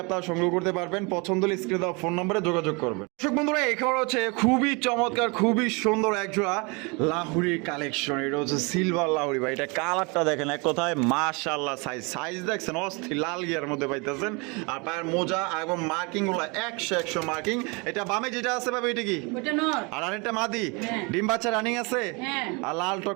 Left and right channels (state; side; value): quieter; left; 29.5 dB